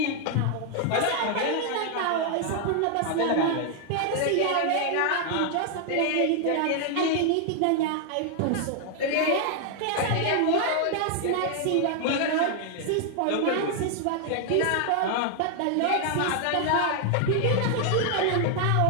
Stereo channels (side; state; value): both; different; correlation 0.00